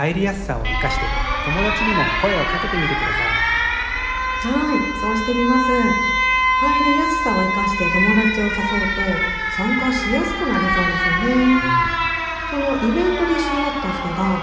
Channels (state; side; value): identical; both; correlation 1.00